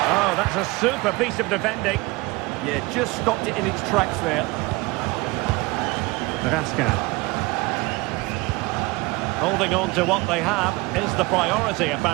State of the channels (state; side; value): quieter; left; 23.4 dB